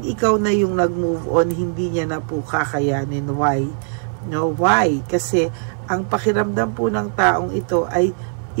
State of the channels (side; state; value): left; silent; 59 dB below the other